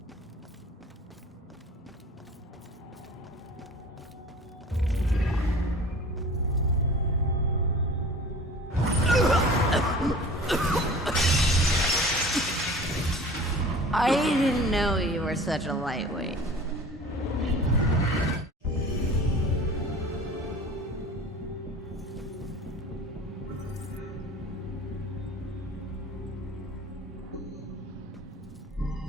I didn't know you were such a lightweight.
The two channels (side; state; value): both; normal; correlation 0.41